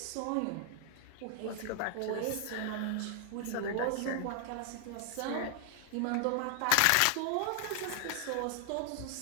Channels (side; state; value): both; different; correlation 0.00